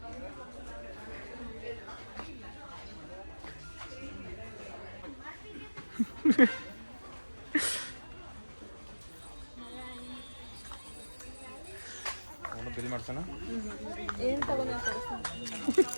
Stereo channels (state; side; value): inverted; both; correlation -1.00